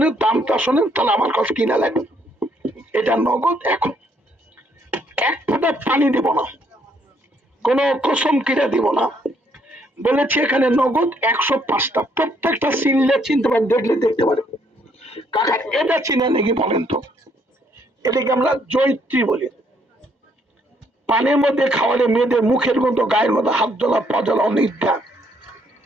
দামটা শোনেন, তাহলে আমার কাছে কিনা লাগবে। এটা নগদ, এখন এক ফোঁটা পানি দিব না, কোন কসম কিনে দিব না, বলেছি এখানে নগদ 105টা, প্রত্যেকটা চিনলে চিনতে পারেন, দেখলে দেখতে পারেন। কাকা এটা চিনে নাকি বলেন তো? এটাকে আমরা জৈত্রী বলি। পানির মধ্যে খাওয়ালে মেয়েদের মুখের গন্ধ, গায়ের মধ্যে হাত জ্বলা, পা জ্বলা, অনিদ্রা।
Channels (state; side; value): normal; both; correlation 0.69